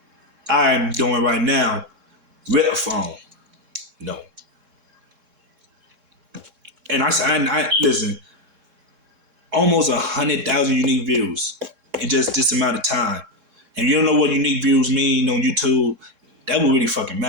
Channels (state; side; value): late; left; 3.6 ms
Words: I'm doing right now with a phone. And I listen. Almost 100,000 unique views in just this amount of time. And you don't know what unique views mean on YouTube, that would really fucking